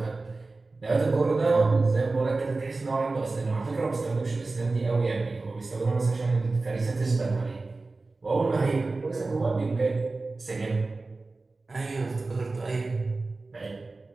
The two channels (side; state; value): left; quieter; 3.5 dB